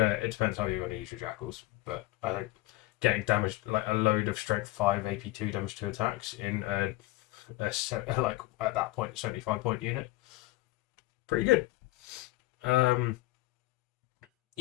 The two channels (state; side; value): quieter; right; 18.5 dB